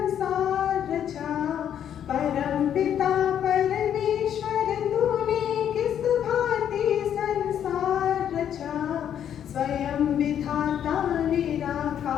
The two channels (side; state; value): right; quieter; 9.5 dB